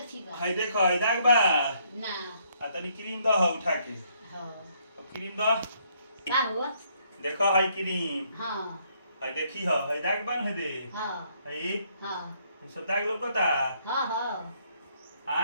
बा। हई देखो हई दाग बा। ना आ तनी क्रीम द हो उठा के। हाँ अब क्रीम द। का हुआ? देखो हई क्रीम। हाँ हई देखी हो हई दाग बन है दे। हाँ हई हाँ सब दाग लौकता। हाँ हाँ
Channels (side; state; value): both; inverted; correlation -0.69